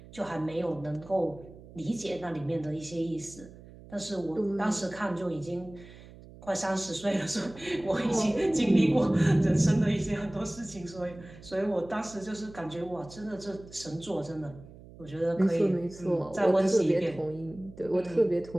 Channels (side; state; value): right; noise; hum, 19 dB below the sound